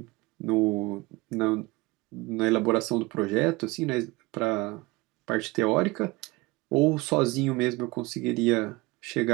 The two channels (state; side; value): quieter; left; 22.7 dB